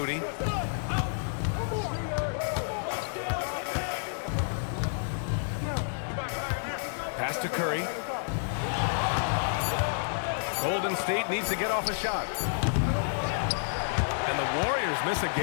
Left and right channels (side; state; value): right; silent; digital silence